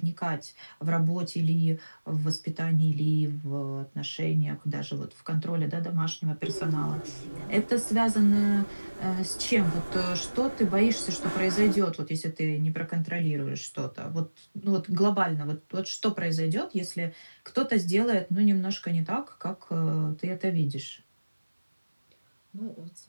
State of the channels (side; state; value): both; inverted; correlation -1.00